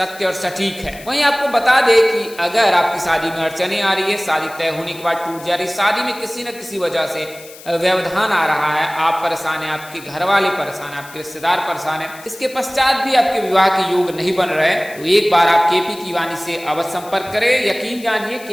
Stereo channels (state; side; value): noise; left; hiss, 19 dB below the sound